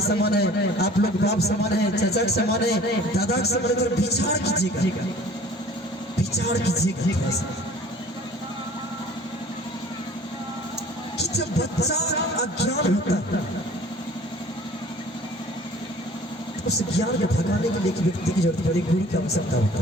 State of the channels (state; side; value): normal; both; correlation 0.49